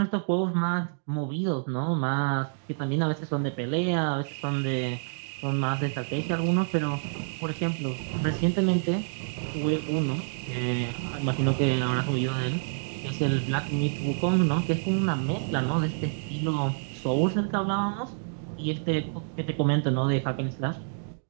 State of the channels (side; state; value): left; silent; digital silence